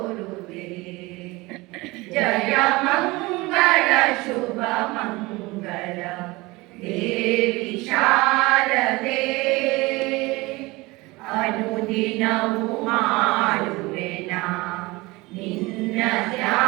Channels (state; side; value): quieter; left; 22.4 dB